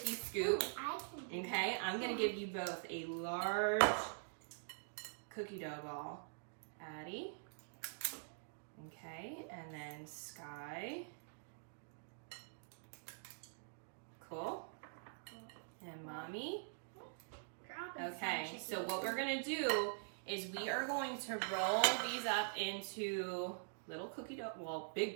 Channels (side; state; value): left; silent; digital silence